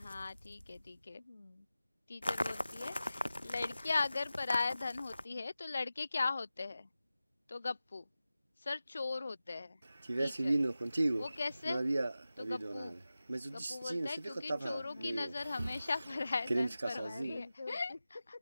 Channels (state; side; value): inverted; both; correlation -0.94